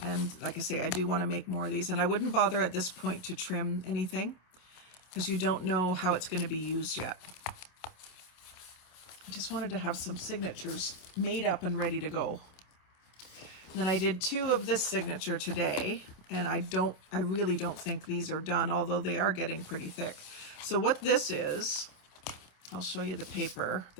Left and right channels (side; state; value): right; late; 27 ms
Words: like I say, I do want to make more of these, and I wouldn't bother at this point to trim anything because you don't know how it's going to be used yet. I just wanted to have some signatures made up and ready to go. Then I did 2 of this signature today, and I really don't think these are done, although they are getting pretty thick. So what this is, I'll show you the paper